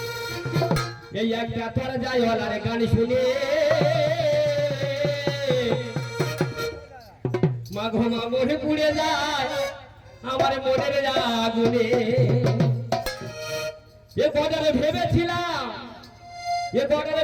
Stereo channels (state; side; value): identical; both; correlation 1.00